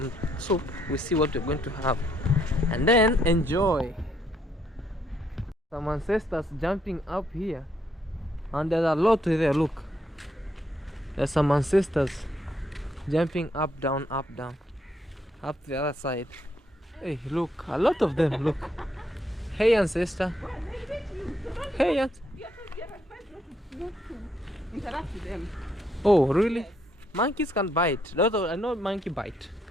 soup. We see what we're going to have, and then enjoy. Some ancestors jumping up here, and there's a lot there. Look, there's some ancestors jumping up, down, up the other side. Hey, look, a lot of them. Look. Hey, ancestor. Hey, Interact with them. oh, really? Monkeys can bite. I know monkey bite.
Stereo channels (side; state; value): both; normal; correlation 0.73